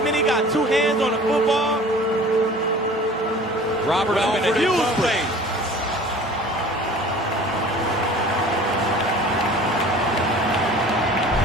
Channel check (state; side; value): normal; both; correlation 0.45